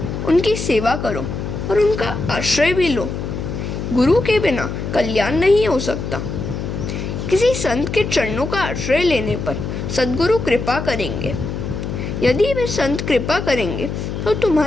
उनकी सेवा करो और उनका आश्रय भी लो। गुरु के बिना कल्याण नहीं हो सकता। किसी संत के चरणों का आश्रय लेने पर सद्गुरु कृपा करेंगे। यदि वे संत कृपा करेंगे तो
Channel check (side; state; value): left; noise; hum, 5 dB below the sound